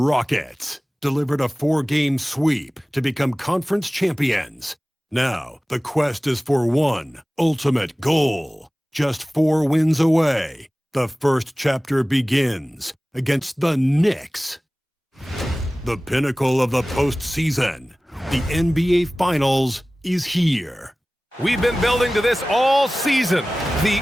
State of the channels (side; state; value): both; normal; correlation 0.97